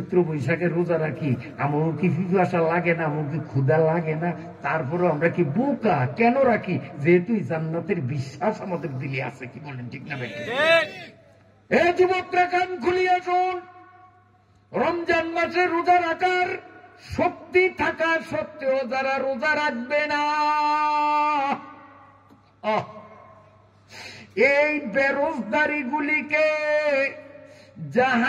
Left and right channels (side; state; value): both; identical; correlation 1.00